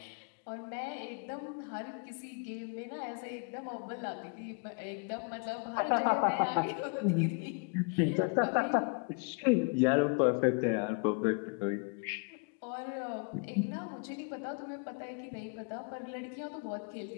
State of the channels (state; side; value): quieter; right; 35.9 dB